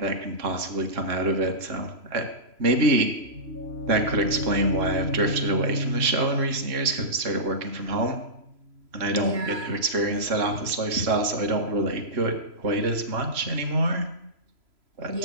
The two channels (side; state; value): left; late; 3.0 ms